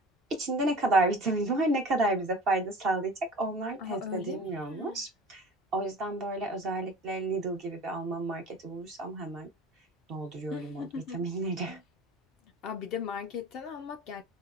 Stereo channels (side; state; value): both; normal; correlation 0.41